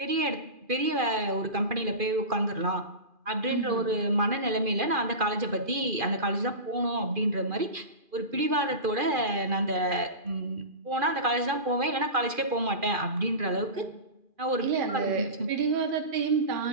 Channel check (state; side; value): late; left; 2.4 ms